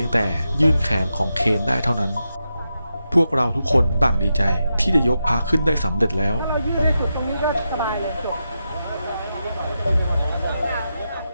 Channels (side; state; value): both; inverted; correlation -0.87